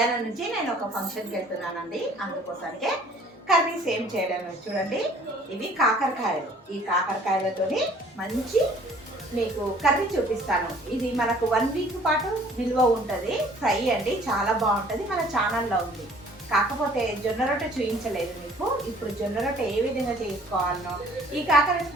నుంచి నేను ఒక ఫంక్షన్కి వెళ్తున్నానండి. అందుకోసానికే కర్రీస్ ఏం చేయడం చూడండి. ఇవి కాకరకాయలు. ఈ కాకరకాయలతోని మంచి మీకు కర్రీ చూపిస్తాను. ఇది మనకు 1 వీక్ పాటు నిల్వ ఉంటుంది. ఫ్రై అండి, చాలా బాగుంటుంది. మన ఛానల్లో ఉంది. కాకపోతే జొన్న రొట్టె చూపించలేదు మీకు. ఇప్పుడు జొన్న రొట్టె ఏ విధంగా చేసుకోవాలనో, ఈ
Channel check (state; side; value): normal; both; correlation 0.55